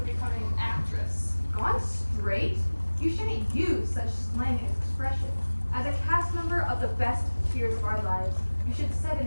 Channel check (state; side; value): inverted; both; correlation -1.00